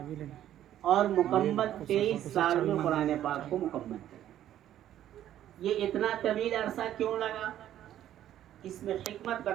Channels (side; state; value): left; quieter; 11.8 dB